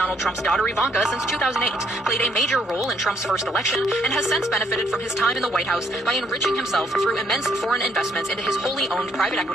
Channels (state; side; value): normal; both; correlation 0.68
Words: Trump's daughter Ivanka since 2008, played a major role in Trump's first election, and has since benefited from his time in the White House by enriching himself through immense foreign investments into his wholly owned private